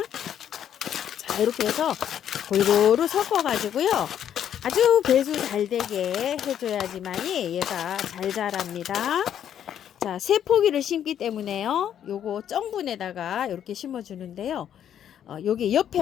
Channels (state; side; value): quieter; right; 9.7 dB